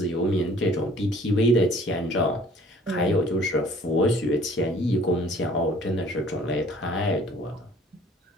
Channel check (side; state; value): both; normal; correlation 0.54